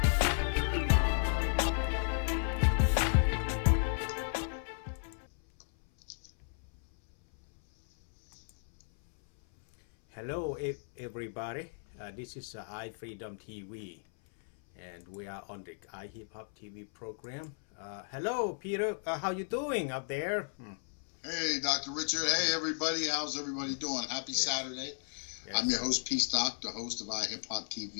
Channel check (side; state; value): right; silent; 55 dB below the other